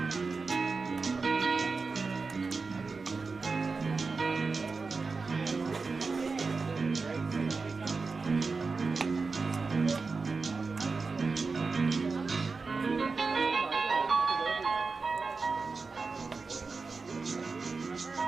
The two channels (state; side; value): quieter; left; 4.3 dB